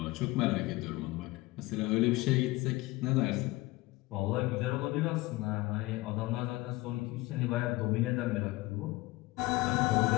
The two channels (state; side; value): quieter; right; 20.4 dB